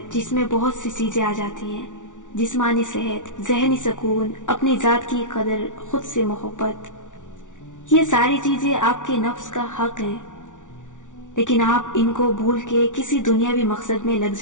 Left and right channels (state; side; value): late; right; 0.87 ms